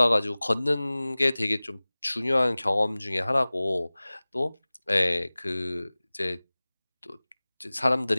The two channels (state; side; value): inverted; both; correlation -0.99